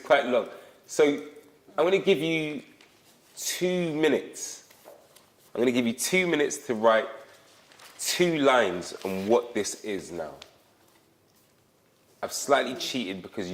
long. So I'm going to give you 2 minutes. I'm going to give you 2 minutes to write 2 lines on what this is now. I've slightly cheated because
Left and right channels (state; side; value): identical; both; correlation 1.00